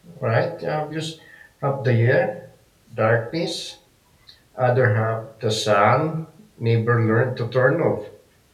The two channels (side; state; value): both; identical; correlation 1.00